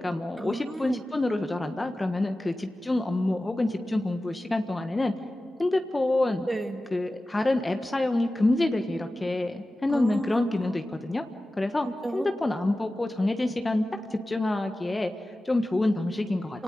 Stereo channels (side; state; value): both; normal; correlation 0.95